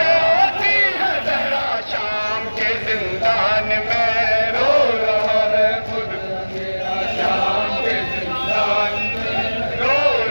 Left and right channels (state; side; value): inverted; both; correlation -1.00